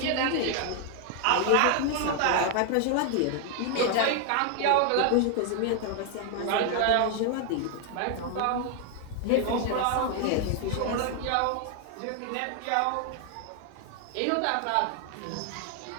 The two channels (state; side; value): different; both; correlation 0.00